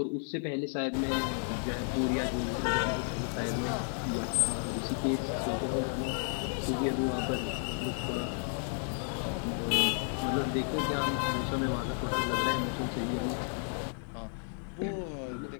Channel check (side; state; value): right; silent; 56 dB below the other